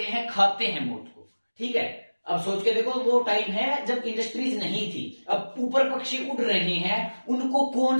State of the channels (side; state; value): both; inverted; correlation -1.00